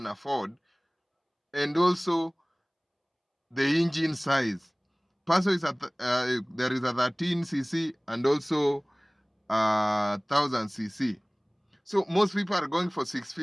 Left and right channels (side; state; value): both; identical; correlation 1.00